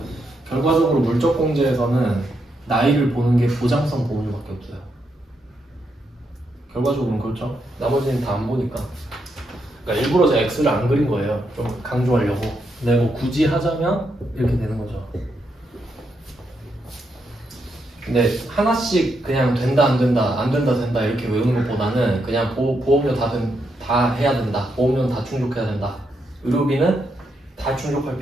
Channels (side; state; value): both; normal; correlation 0.81